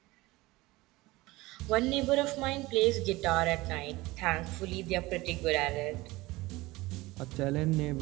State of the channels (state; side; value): quieter; left; 20.4 dB